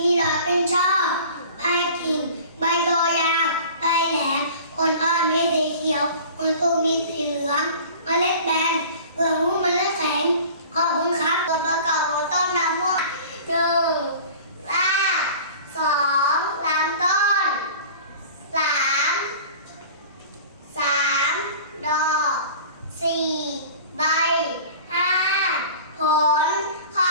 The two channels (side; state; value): both; inverted; correlation -0.42